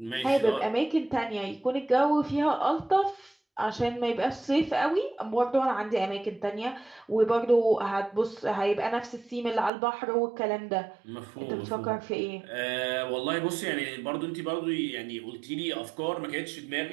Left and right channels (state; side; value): drops out; left; at 9.7 s